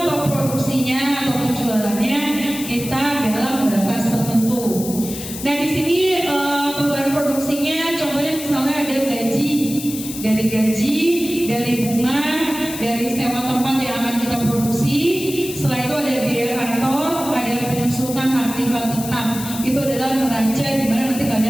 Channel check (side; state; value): left; noise; hiss, 10 dB below the sound